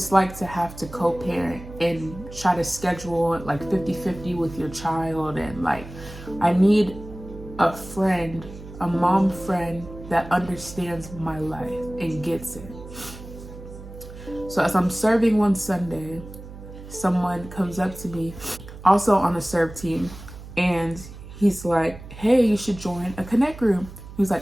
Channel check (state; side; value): noise; right; hum, 14 dB below the sound